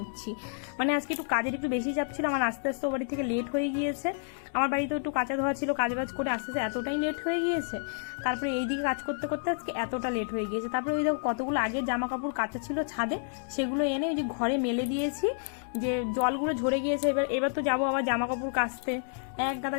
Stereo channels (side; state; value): right; silent; digital silence